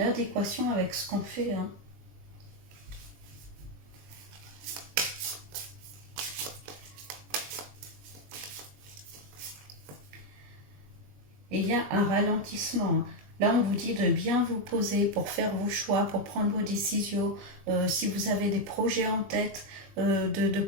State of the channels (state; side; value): late; left; 21 ms